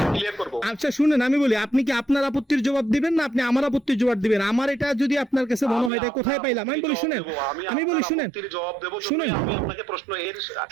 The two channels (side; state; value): left; drops out; at 5.9 s